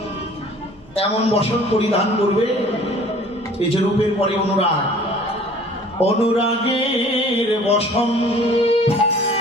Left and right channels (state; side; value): noise; right; rumble, 29 dB below the sound